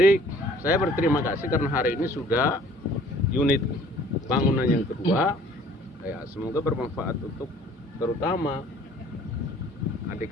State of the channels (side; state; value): both; normal; correlation 0.54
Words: saya berterima kasih karena hari ini sudah unit bangunan yang kedua. Ya, semoga bermanfaat untuk terutama